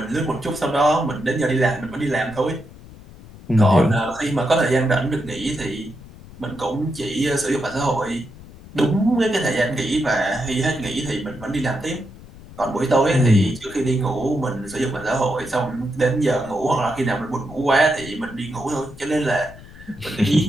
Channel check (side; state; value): left; noise; rumble, 18 dB below the sound